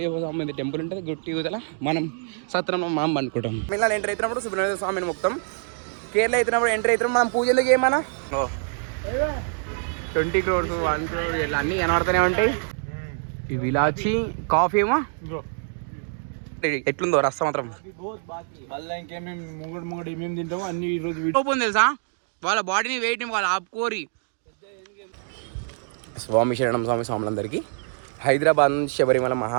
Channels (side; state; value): left; silent; 62 dB below the other